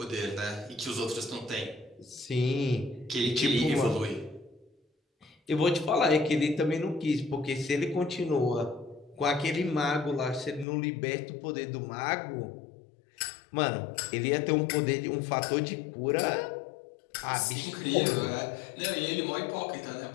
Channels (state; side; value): drops out; right; at 10.7 s